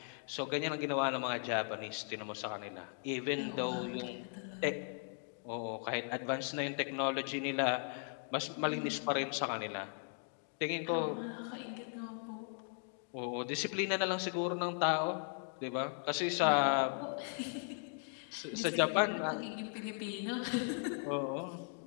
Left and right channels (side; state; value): right; silent; 53 dB below the other